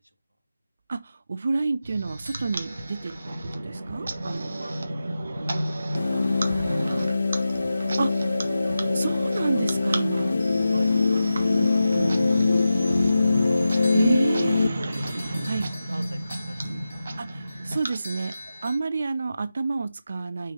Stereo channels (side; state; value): both; inverted; correlation -0.92